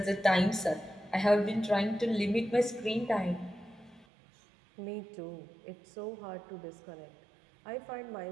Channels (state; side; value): drops out; left; at 4.0 s